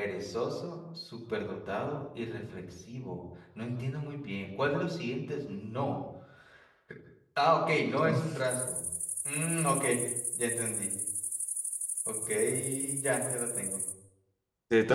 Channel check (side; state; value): both; identical; correlation 1.00